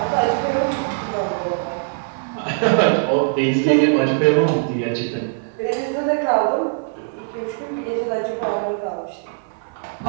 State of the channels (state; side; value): silent; left; 65 dB below the other